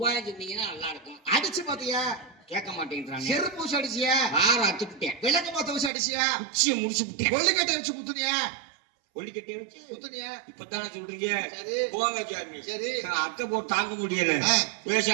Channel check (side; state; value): left; drops out; at 5.9 s